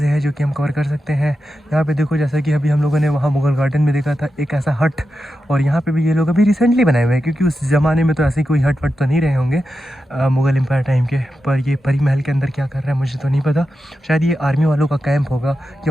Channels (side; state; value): both; normal; correlation 0.90